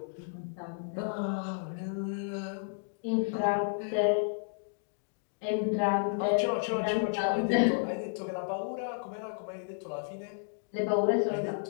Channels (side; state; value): right; silent; digital silence